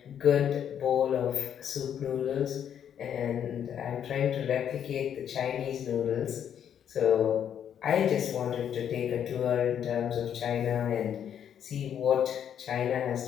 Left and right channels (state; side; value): quieter; right; 9.1 dB